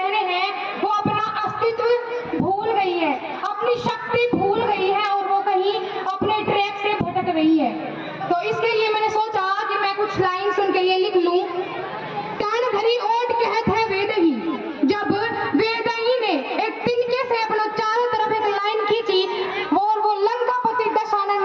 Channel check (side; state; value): both; identical; correlation 1.00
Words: हैं, वो अपना अस्तित्व भूल गई है, अपनी शक्ति भूल गई है और वो कहीं अपने ट्रैक से भटक रही है। तो इसके लिए मैंने सोचा कि मैं कुछ लाइन्स उनके लिए लिख लूँ। कान भरी ओट कहत है वेद ही, जब वेद ही ने एक तिनके से अपना चारों तरफ एक लाइन खींची, और वो लंकापति